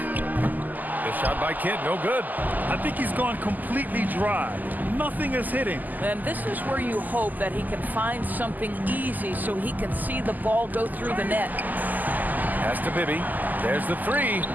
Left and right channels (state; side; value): late; left; 0.083 ms